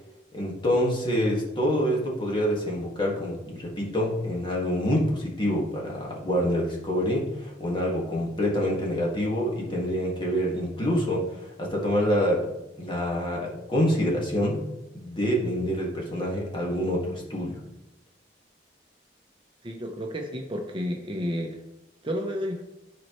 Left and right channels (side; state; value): both; normal; correlation 0.59